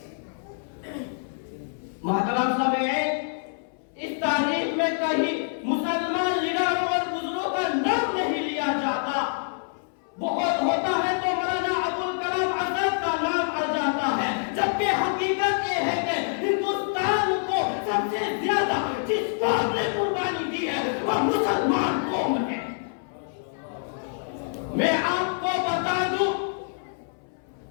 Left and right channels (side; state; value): right; silent; 61 dB below the other